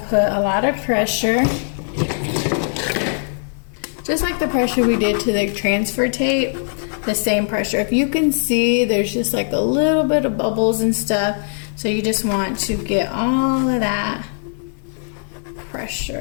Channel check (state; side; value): silent; right; 66 dB below the other